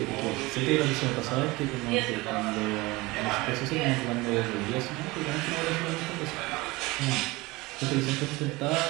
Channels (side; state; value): left; quieter; 22.1 dB